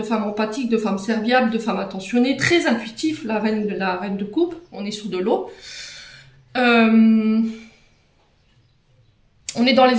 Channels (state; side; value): identical; both; correlation 1.00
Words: femmes empathiques, de femmes serviables, de femmes attentionnées, très intuitifs, la reine de coupe, on est sur de l'eau. On est dans